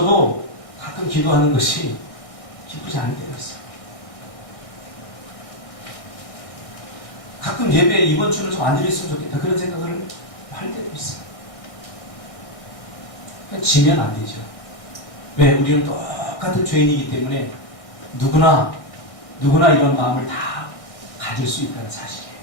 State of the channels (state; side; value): late; right; 1.6 ms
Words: 가끔 기도하는 것이 기쁘지 않을 때가 있어요. 가끔 예배 이번 주는 좀 안 드렸으면 좋겠다 그런 생각을 할 때도 있어요. 지면 안 되죠. 왜? 우리는 똑같은 죄인이기 때문에 누구나 이런 마음을 다 가질 수 있다는 사실이에요.